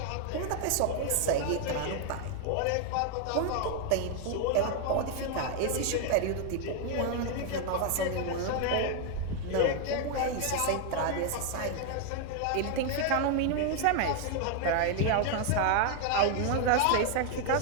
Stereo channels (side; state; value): both; different; correlation 0.00